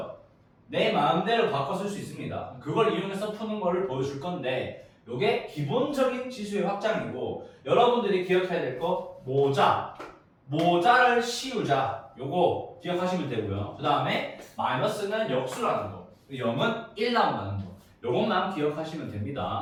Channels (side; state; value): both; identical; correlation 1.00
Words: 내 마음대로 바꿔 쓸 수 있습니다. 그걸 이용해서 푸는 거를 보여줄 건데 이게 기본적인 지수의 확장이고 여러분들이 기억해야 될 거 모자를 씌우자. 요거 기억하시면 되고요. 그 다음에 마이너스는 역수라는 거, 0은 1 나온다는 거, 요것만 기억하시면